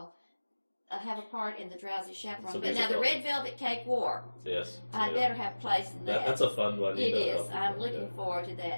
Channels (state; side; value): inverted; both; correlation -1.00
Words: have a part in the Drowsy Chaperone. So But now the musical. Red Velvet Cake War. Yes. I yeah. better have a place in that. That's a fun one. It you know. is. I'm looking Yeah. forward to